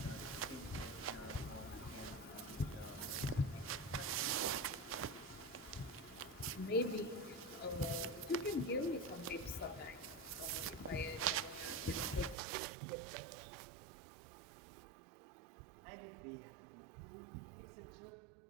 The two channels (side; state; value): left; drops out; at 12.4 s